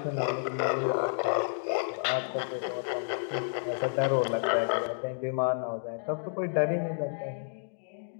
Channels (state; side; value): silent; right; digital silence